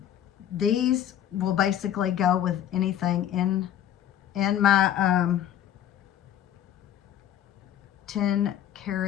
These will basically go with anything in my 10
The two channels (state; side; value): quieter; right; 10.8 dB